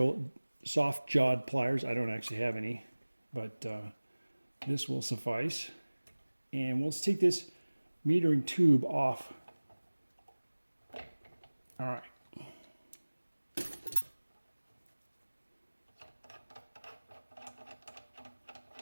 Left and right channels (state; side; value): inverted; both; correlation -1.00